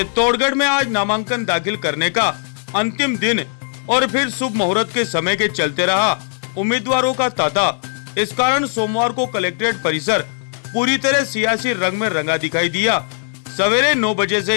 में आज नामांकन दाखिल करने का अंतिम दिन और फिर शुभ मुहूर्त के समय के चलते रहा उम्मीदवारों का तांता। इस कारण सोमवार को कलेक्ट्रेट परिसर पूरी तरह सियासी रंग में रंगा दिखाई दिया। सवेरे 9 बजे से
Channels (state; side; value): silent; right; digital silence